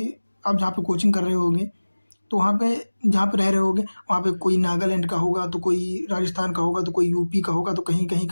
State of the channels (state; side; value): inverted; both; correlation -1.00